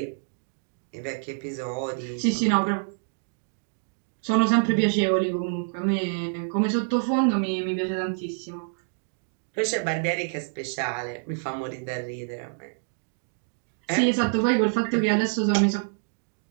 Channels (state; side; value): silent; left; digital silence